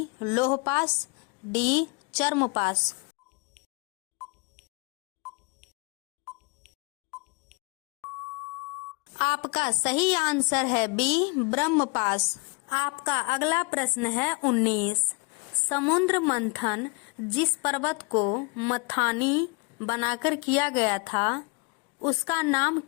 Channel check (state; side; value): quieter; right; 29.1 dB